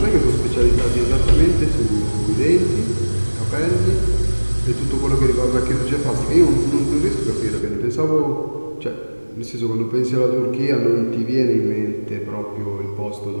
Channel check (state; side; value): inverted; both; correlation -1.00